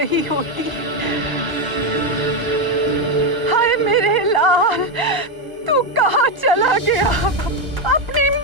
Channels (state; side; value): late; left; 1.0 ms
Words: होती। हाय मेरे लाल, तू कहाँ चला गया अपनी